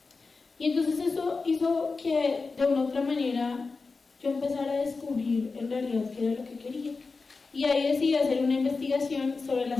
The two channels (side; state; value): right; quieter; 4.2 dB